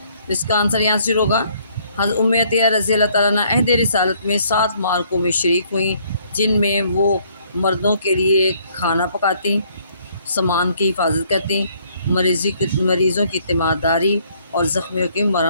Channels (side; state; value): both; inverted; correlation -0.65